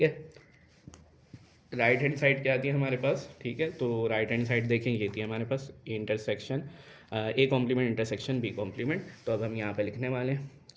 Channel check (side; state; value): both; identical; correlation 1.00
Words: है। राइट हैंड साइड क्या आती है हमारे पास, ठीक है। तो राइट हैंड साइड देखें ये थी हमारे पास intersection, A complement intersection B complement. तो अब हम यहाँ पे लिखने वाले हैं